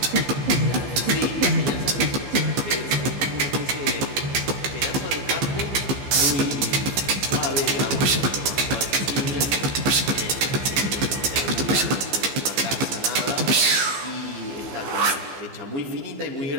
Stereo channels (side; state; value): left; late; 15 ms